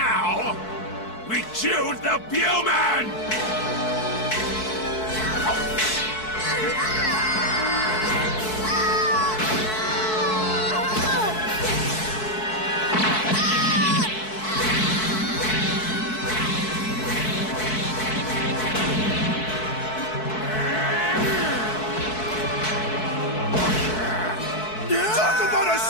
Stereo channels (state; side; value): late; right; 4.6 ms